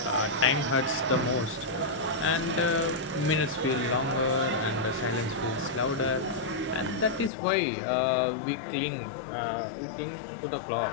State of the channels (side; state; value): right; drops out; at 7.3 s